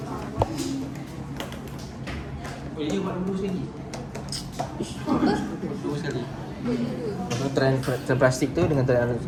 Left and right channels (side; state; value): both; identical; correlation 1.00